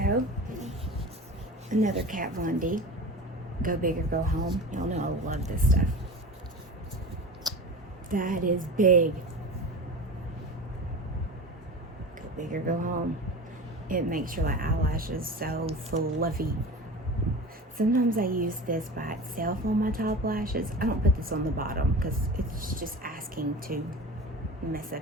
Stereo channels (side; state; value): both; normal; correlation 0.33